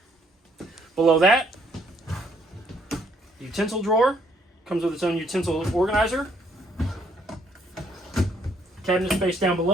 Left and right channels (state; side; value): normal; both; correlation 0.68